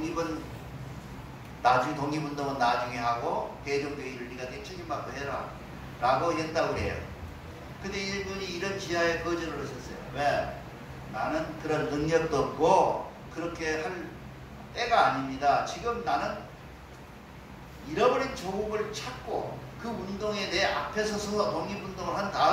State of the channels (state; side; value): identical; both; correlation 1.00